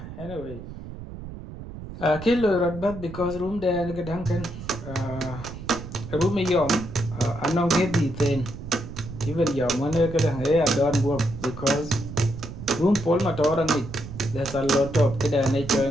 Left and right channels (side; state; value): right; noise; rumble, 11 dB below the sound